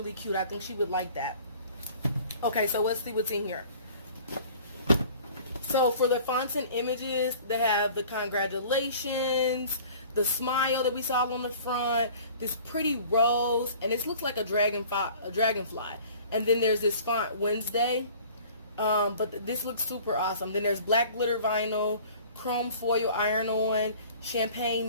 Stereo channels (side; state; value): both; inverted; correlation -0.48